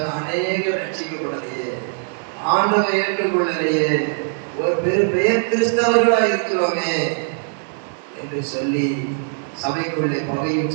அநேக ரட்சிக்கப்படலையே, ஆண்டவரை ஏற்றுக்கொள்ளலையே, ஒரு பெயர் கிறிஸ்தவர்களா இருக்கிறோமே என்று சொல்லி சபைக்குள்ளே பகையும்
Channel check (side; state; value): left; silent; digital silence